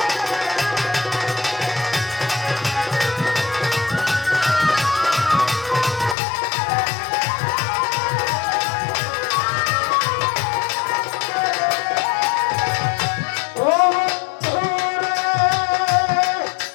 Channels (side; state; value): right; drops out; at 6.2 s